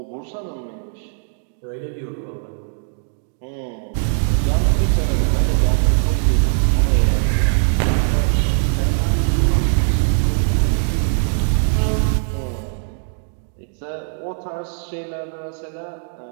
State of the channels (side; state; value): left; silent; digital silence